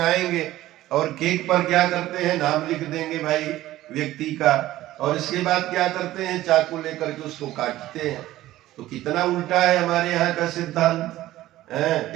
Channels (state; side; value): quieter; left; 15.3 dB